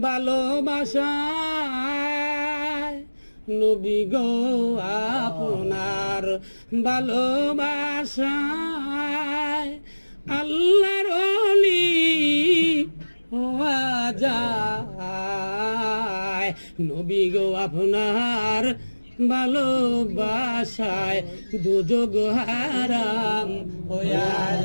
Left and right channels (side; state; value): both; inverted; correlation -1.00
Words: ভালোবাসায় নবী গো আপনার ভালোবাসায় আল্লাহর ওলি হওয়া যায় নবী গো আপনার ভালোবাসায় দুযোগ হারাম হইয়া